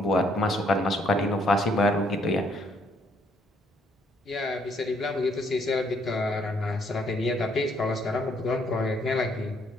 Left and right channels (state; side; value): normal; both; correlation 0.69